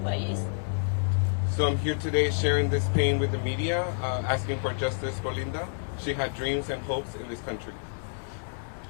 So I'm here today sharing this pain with the media, asking for justice for Linda. She had dreams and hopes in this country.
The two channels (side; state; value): right; silent; digital silence